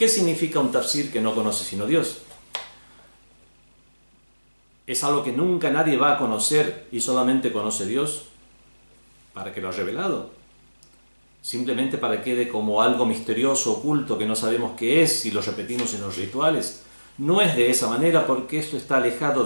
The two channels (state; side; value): inverted; both; correlation -1.00